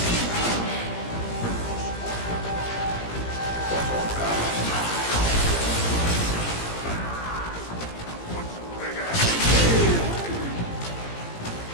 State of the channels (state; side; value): late; right; 17 ms